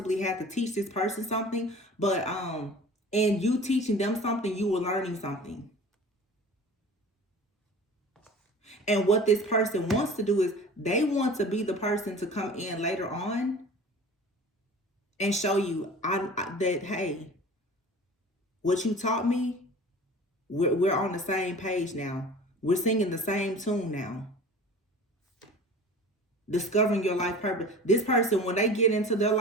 had to teach this person something, but in you teaching them something, you were learning something. And what this person wants to do is they want to be the person to come in later on and show you that, hey, what you taught me, we're on the same page now. We're singing the same tune now. Discovering your life purpose. This person, when they get into their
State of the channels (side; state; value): both; normal; correlation 0.41